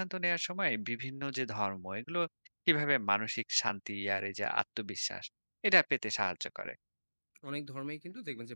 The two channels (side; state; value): both; inverted; correlation -1.00